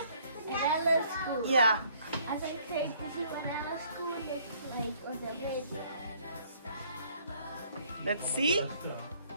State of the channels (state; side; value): inverted; both; correlation -0.61